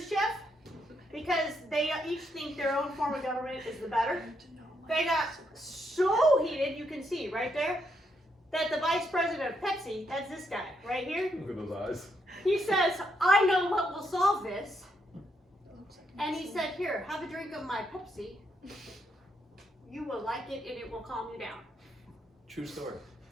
because they each think their own form of government is the better. They got so heated, you can see right there, that the vice president of Pepsi, that's this guy right here. Look at those eyes. He says, I know what will solve this. And he said, here, have a drink of my Pepsi. You will like it and it will calm you down. True story.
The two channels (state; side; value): normal; both; correlation 0.77